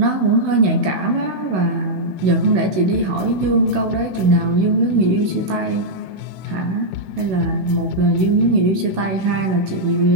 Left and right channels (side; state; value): left; late; 16 ms